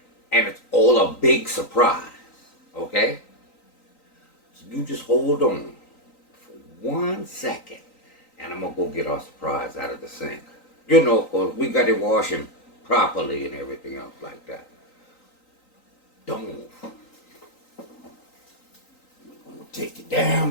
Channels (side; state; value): right; late; 3.9 ms